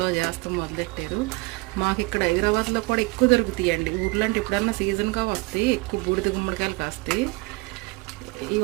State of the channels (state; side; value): quieter; left; 25.2 dB